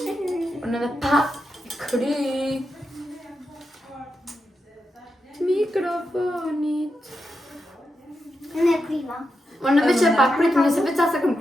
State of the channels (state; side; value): normal; both; correlation 0.87